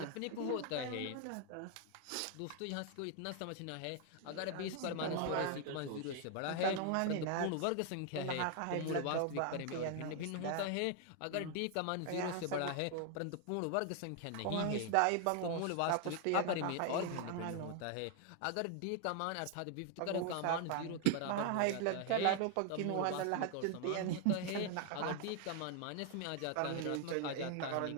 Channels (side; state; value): both; different; correlation 0.00